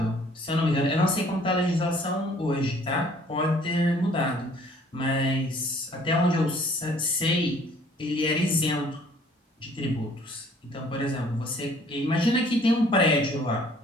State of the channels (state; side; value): normal; both; correlation 0.57